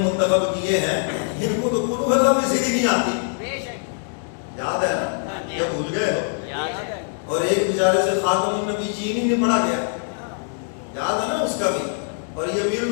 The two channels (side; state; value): right; silent; digital silence